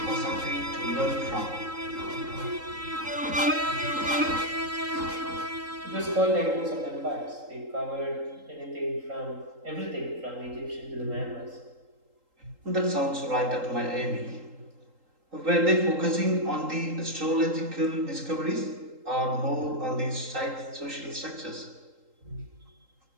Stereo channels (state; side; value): late; left; 3.8 ms